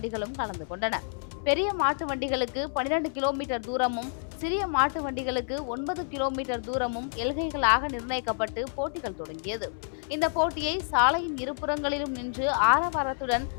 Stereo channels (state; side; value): silent; right; 59 dB below the other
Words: கலந்து கொண்டன. பெரிய மாட்டு வண்டிகளுக்கு 12 கிலோமீட்டர் தூரமும், சிறிய மாட்டு வண்டிகளுக்கு 9 கிலோமீட்டர் தூரமும் எல்கைகளாக நிர்ணயிக்கப்பட்டு போட்டிகள் தொடங்கியது. இந்த போட்டியை சாலையின் இருபுறங்களிலும் நின்று ஆரவாரத்துடன்